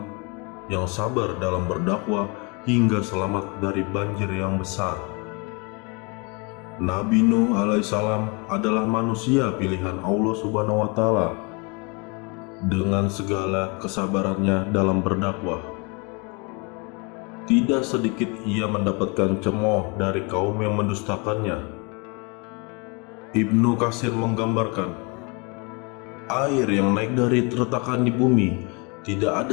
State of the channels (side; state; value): right; quieter; 30.1 dB